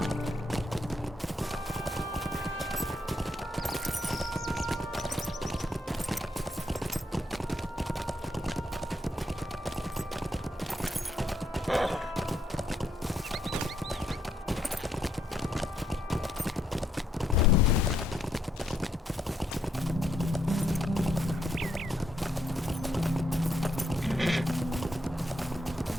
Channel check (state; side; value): normal; both; correlation 0.75